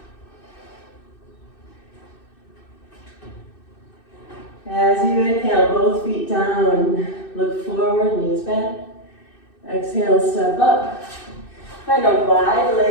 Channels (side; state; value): right; late; 2.6 ms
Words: As you inhale, both feet down, look forward, knees bent. Exhale, step up. Find a